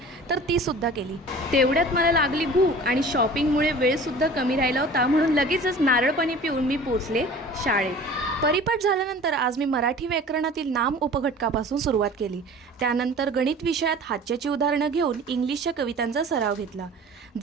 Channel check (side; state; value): both; normal; correlation 0.43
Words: तर ती सुद्धा केली। तेवढ्यात मला लागली भूक आणि शॉपिंगमुळे वेळसुद्धा कमी राहिला होता, म्हणून लगेचच नारळ पाणी पिऊन मी पोचले शाळेत। परिपाठ झाल्यानंतर आज मी मराठी व्याकरणातील नाम उपघटकापासून सुरुवात केली। त्यानंतर गणित विषयात हातच्याची उदाहरणं घेऊन इंग्लिशच्या कवितांचा सराव घेतला।